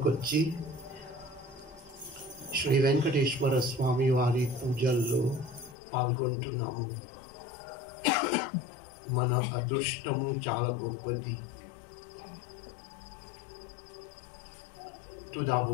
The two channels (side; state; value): right; drops out; at 5.8 s